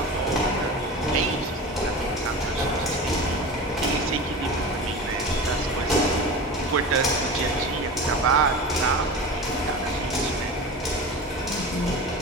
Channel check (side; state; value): both; normal; correlation 0.30